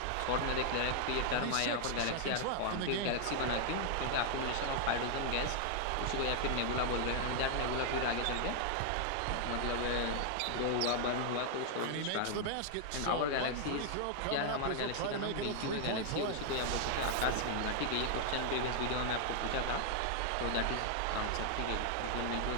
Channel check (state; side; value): different; both; correlation 0.00